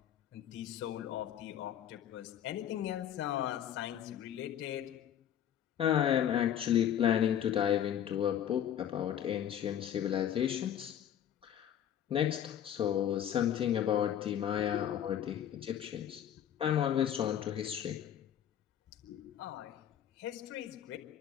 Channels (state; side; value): quieter; right; 10.1 dB